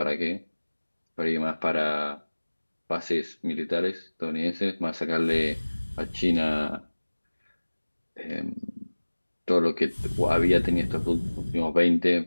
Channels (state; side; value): inverted; both; correlation -1.00